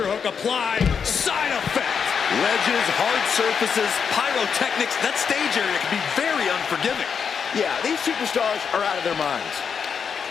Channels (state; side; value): quieter; right; 6.6 dB